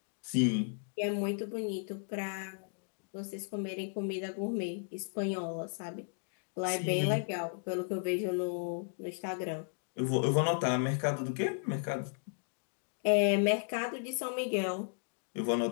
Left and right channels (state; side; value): silent; right; digital silence